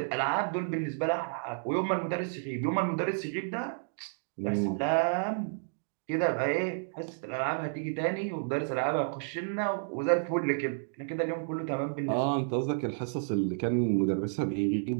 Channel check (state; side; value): silent; left; digital silence